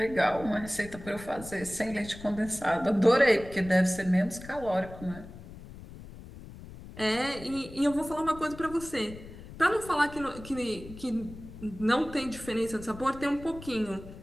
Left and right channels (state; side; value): noise; left; rumble, 15 dB below the sound